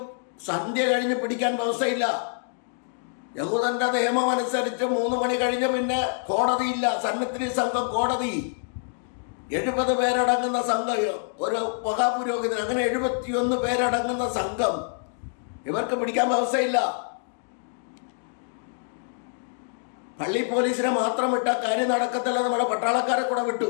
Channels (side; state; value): right; silent; digital silence